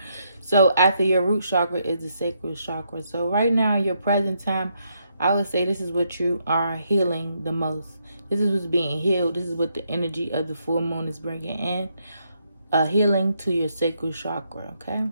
So after your root chakra is the sacral chakra. So right now, in your present time, I would say this is what you are healing the most. This is what's being healed. This is what the energy of the full moon is bringing in. A healing to your sacral chakra, okay?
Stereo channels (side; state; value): both; inverted; correlation -0.77